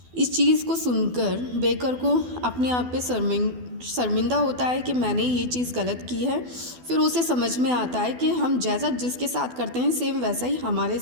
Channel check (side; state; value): left; late; 12 ms